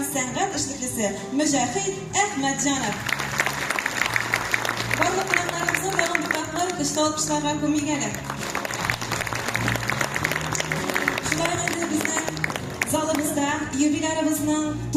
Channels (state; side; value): identical; both; correlation 1.00